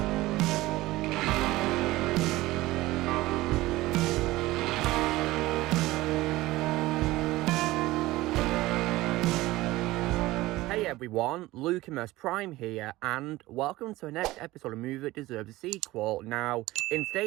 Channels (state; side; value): quieter; left; 18.3 dB